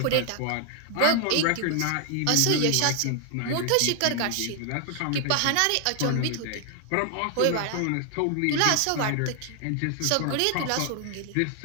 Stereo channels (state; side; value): different; both; correlation 0.00